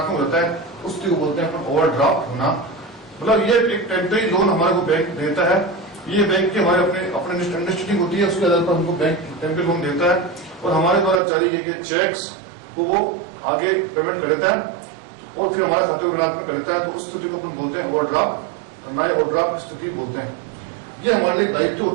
होता है, उस स्थिति को बोलते हैं अपन ओवरड्राफ्ट होना। मतलब ये एक टेम्परेरी लोन हमारे को बैंक देता है। ये बैंक की हमारे अपने अंडरस्टैंडिंग होती है, उसके आधार पर हमको बैंक टेम्परेरी लोन देता है और हमारे द्वारा जारी किए गए चेक्स को वो आगे पेमेंट कर देता है और फिर हमारा खाते को ऋणात्मक कर देता है। तो उस स्थिति को अपन बोलते हैं ओवरड्राफ्ट, ओवरड्राफ्ट की स्थिति बोलते हैं। ये हमारे लिए दायित्व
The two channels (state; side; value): drops out; left; at 11.2 s